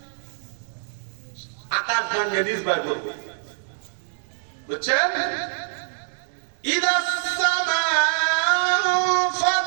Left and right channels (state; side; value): silent; left; digital silence